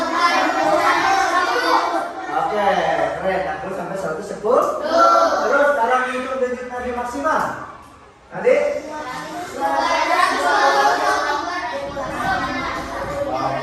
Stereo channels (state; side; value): identical; both; correlation 1.00